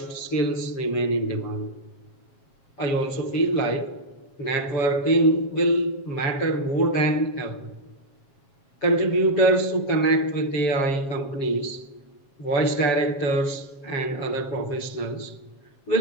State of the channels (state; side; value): late; right; 7.4 ms